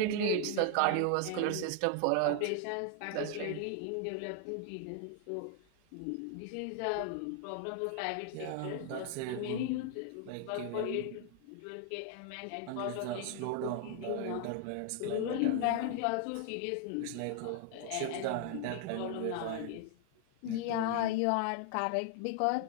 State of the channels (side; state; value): both; different; correlation 0.00